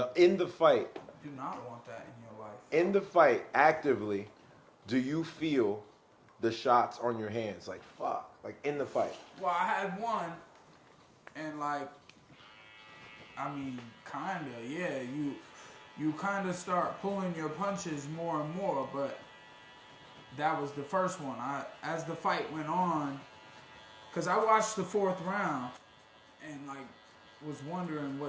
in the fight. Do not want that in your life. In the fight, actively, do you feel the shots on your hands? Like, fuck. Like, in the fight. Well, I had one, and like, I mean, kinda, yeah. You kind of start pulling your punches more and more, but that was the first one. As the fight went on, because I watched the fourth round, and like was wondering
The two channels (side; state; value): both; identical; correlation 1.00